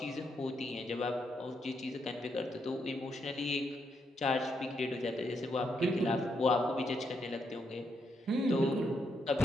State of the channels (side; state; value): both; normal; correlation 0.79